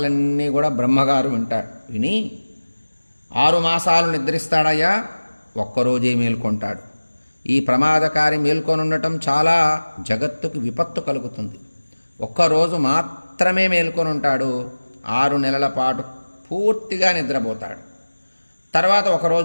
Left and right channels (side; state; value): both; inverted; correlation -1.00